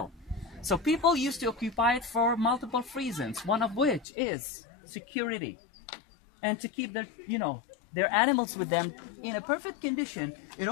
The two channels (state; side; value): drops out; right; at 4.0 s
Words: So people used to occupy it for multiple reasons, one of which is security. And to keep their, their animals with them in a perfect condition in